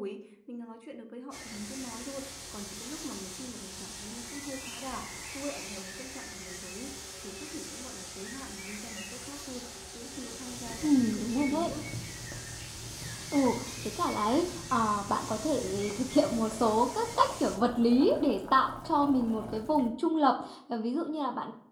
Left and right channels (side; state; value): both; identical; correlation 1.00